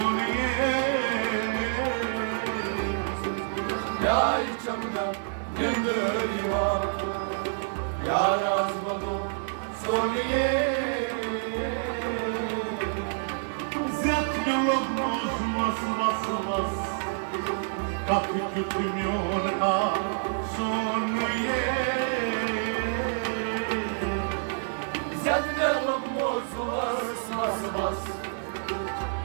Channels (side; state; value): left; silent; digital silence